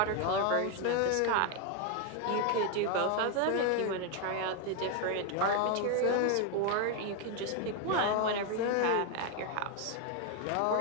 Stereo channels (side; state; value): both; different; correlation 0.01